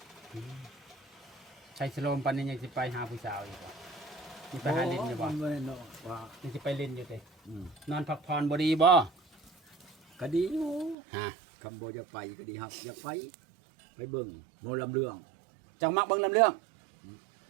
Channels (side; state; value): left; drops out; at 11.0 s